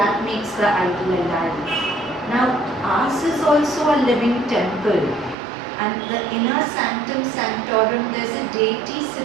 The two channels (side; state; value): left; drops out; at 5.4 s